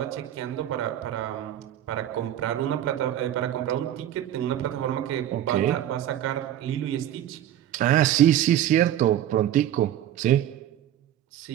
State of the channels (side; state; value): left; quieter; 11.7 dB